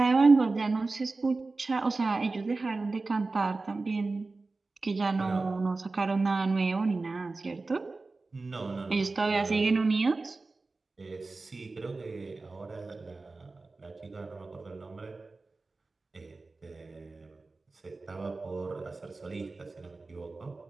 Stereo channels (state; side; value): quieter; left; 3.6 dB